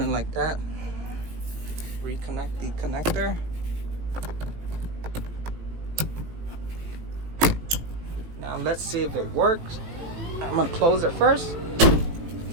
like that, reconnect the connector. Now let's see if it works. I'm gonna close it first.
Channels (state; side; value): late; left; 18 ms